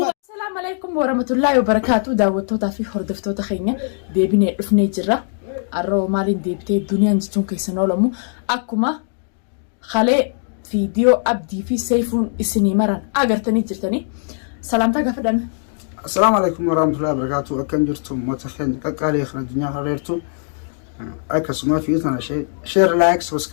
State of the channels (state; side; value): silent; right; digital silence